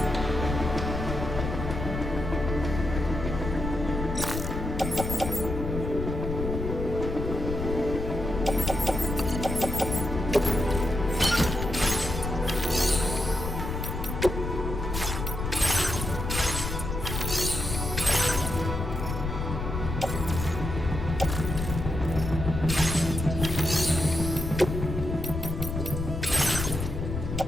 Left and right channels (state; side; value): noise; left; rumble, 4 dB below the sound